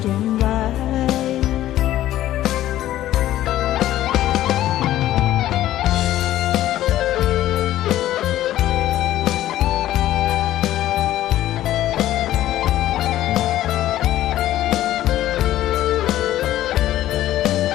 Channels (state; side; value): quieter; right; 13.7 dB